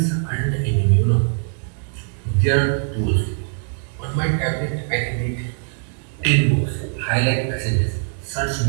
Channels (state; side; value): silent; left; digital silence